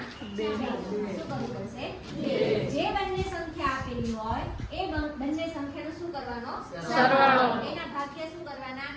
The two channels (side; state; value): both; identical; correlation 1.00